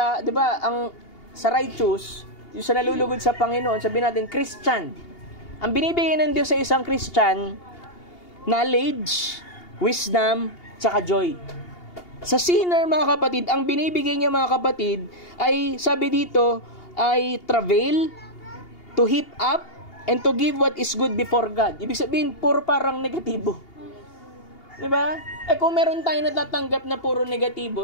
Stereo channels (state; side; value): late; right; 2.8 ms